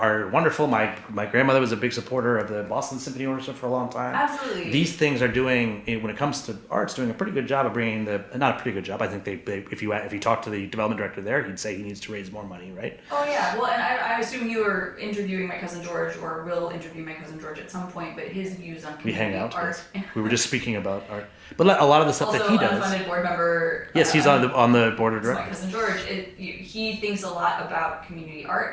wonderful. My grandmother was a big supporter of the Boston Symphony Orchestra for a long time. Absolutely. These things are doing, when it comes to arts, doing a pretty good job of bringing not a pretty good job. I think if you talk to the development director there, he'd say he needs to raise more money, right? Oh yeah, well, and I assume you are interviewing my cousin George, or will interview my cousin George at some point, but his views on We hang community out. art. Yes. We were just speaking about art, but a lot of the stuff Also, that he does. unfunded board member. Yes, he's on the board of So my directors. cousin George, he thinks a lot about community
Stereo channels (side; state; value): both; identical; correlation 1.00